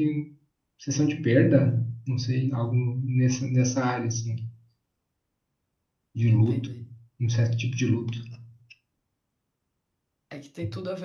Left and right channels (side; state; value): both; identical; correlation 1.00